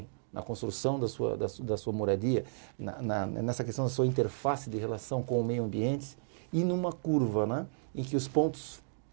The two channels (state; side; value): silent; left; digital silence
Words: na construção da sua moradia, nessa questão da sua interface de relação com o meio ambiente, e numa curva, em que os pontos